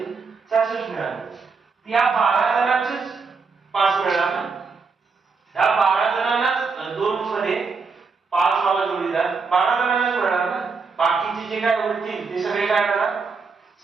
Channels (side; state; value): left; quieter; 4.8 dB